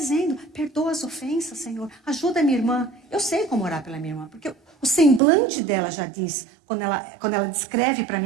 perdoa as ofensas, Senhor. Ajuda a minha irmã. Eu sei como orar pela minha irmã, porque o semblante dela já diz, quando ela descreve para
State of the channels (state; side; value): drops out; left; at 5.2 s